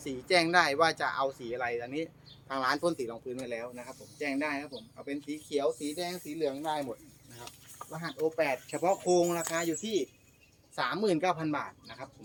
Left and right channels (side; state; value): both; identical; correlation 1.00